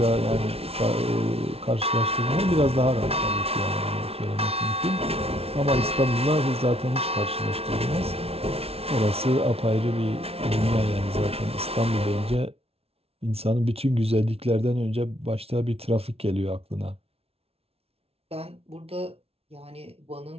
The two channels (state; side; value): late; left; 0.29 ms